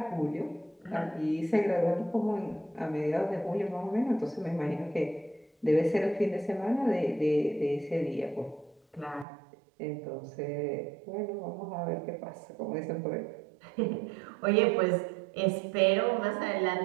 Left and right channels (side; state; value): left; drops out; at 9.2 s